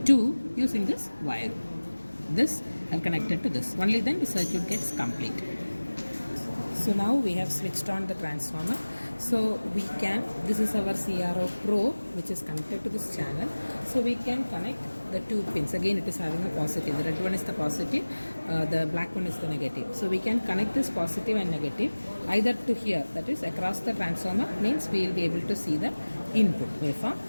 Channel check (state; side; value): inverted; both; correlation -1.00